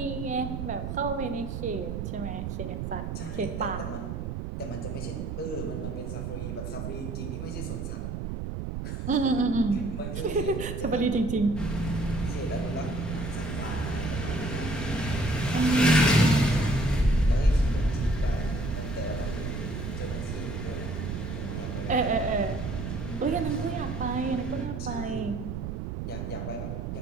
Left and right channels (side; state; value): right; noise; rumble, 4 dB below the sound